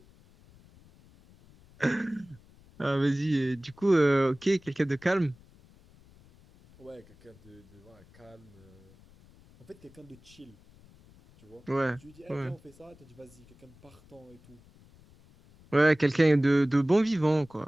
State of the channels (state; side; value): noise; left; rumble, 26 dB below the sound